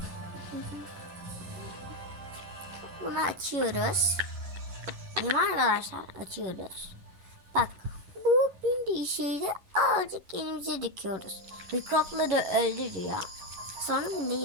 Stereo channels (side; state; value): left; late; 11 ms